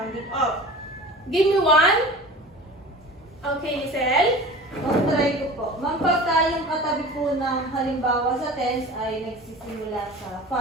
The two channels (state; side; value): normal; both; correlation 0.37